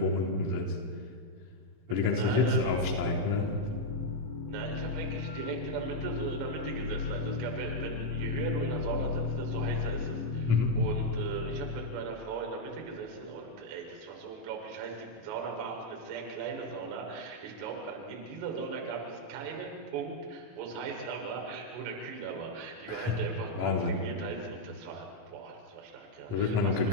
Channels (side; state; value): left; late; 18 ms